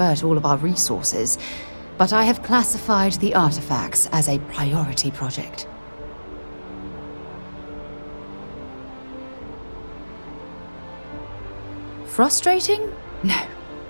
all of our resources, but I have classified the artifacts as a priority project. Frustrating? No.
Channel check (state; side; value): inverted; both; correlation -1.00